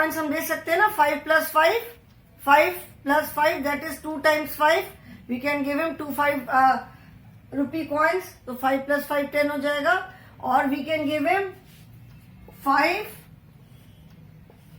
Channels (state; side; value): identical; both; correlation 1.00